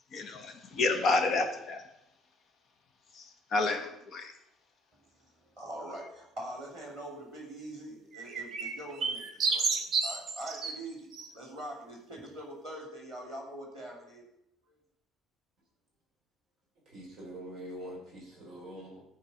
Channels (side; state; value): both; normal; correlation 0.59